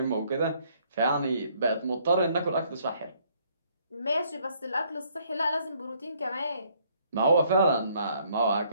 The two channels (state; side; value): inverted; both; correlation -0.66